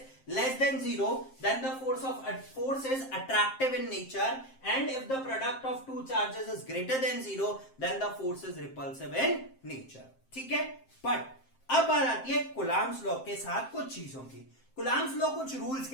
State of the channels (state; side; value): late; right; 7.6 ms